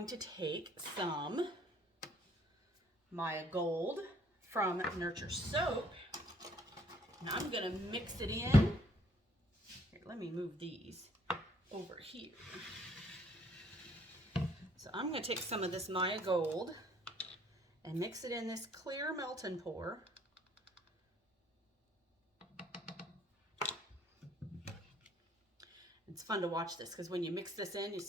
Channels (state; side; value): normal; both; correlation 0.63